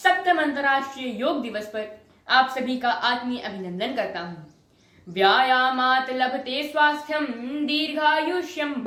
अंतर्राष्ट्रीय योग दिवस पर आप सभी का आत्मीय अभिनंदन करता हूँ। व्यायामात् लभते स्वास्थ्यम दीर्घायुष्यम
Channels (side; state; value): both; identical; correlation 1.00